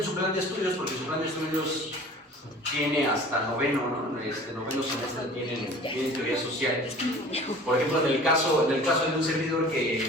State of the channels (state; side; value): normal; both; correlation 0.45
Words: su plan de estudios, porque su plan de estudios tiene hasta noveno, ¿no? Noveno semestre tienen teoría social. Por ejemplo, en el caso de un servidor